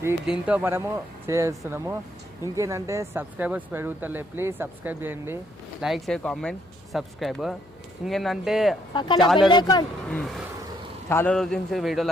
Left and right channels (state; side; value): noise; left; hum, 28 dB below the sound